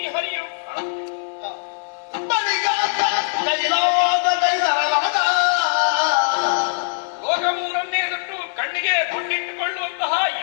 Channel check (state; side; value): silent; right; digital silence